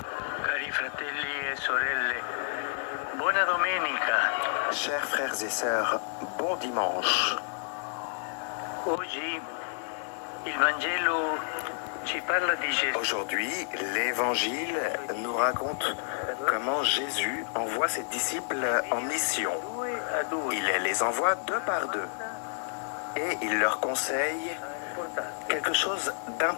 Chers frères et sœurs, bon dimanche. Aujourd'hui, l'Évangile nous raconte comment Jésus envoie ses disciples en mission. Il les envoie deux par deux et il leur conseille quelque chose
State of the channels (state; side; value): silent; right; digital silence